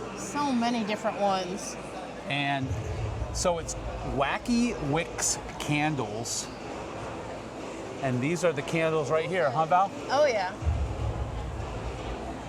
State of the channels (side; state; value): both; identical; correlation 1.00